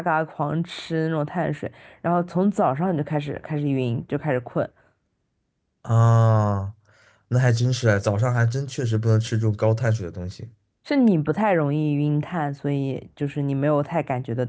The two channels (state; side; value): identical; both; correlation 1.00